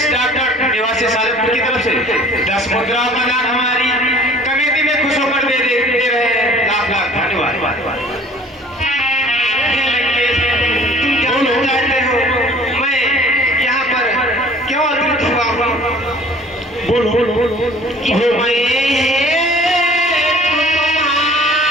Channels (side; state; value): both; normal; correlation 0.50